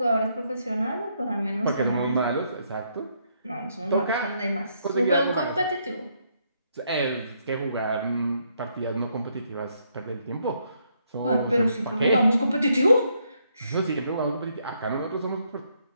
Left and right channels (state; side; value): inverted; both; correlation -0.74